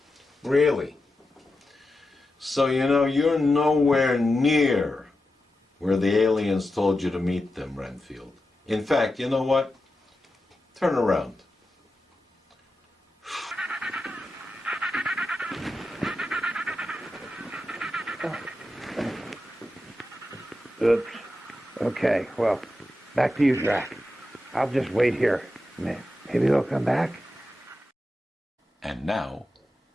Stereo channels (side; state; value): both; normal; correlation 0.90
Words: Really? So, you're nowhere near where the aliens told you to meet them, Renfield. In fact, you know what? Turn around. Oops. Okay, well, back to you, Drac. I'll just wait here. Maybe they'll come back? And now,